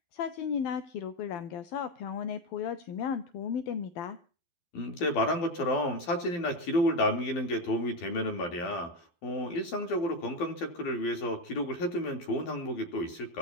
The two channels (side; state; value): right; late; 12 ms